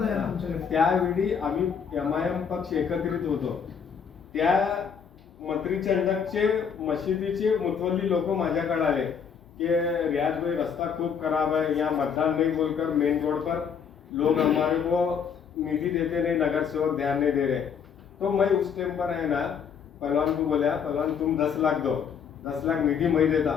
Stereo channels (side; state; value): right; quieter; 6.9 dB